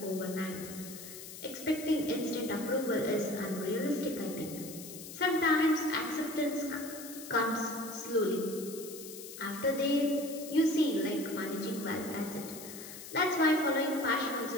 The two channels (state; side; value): noise; left; hiss, 12 dB below the sound